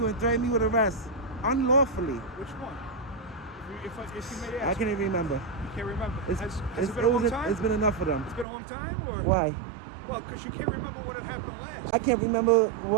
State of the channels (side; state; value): left; drops out; at 8.5 s